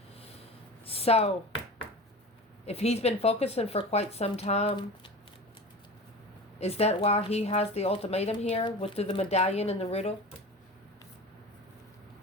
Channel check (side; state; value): both; normal; correlation 0.33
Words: So, if he's been focusing for quite some time, is that why he has the ultimatum here with the medallion and the riddle?